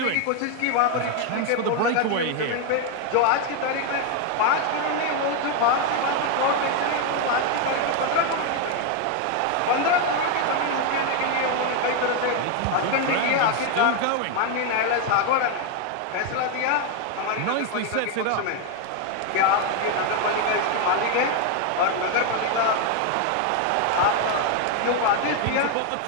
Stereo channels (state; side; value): different; both; correlation 0.01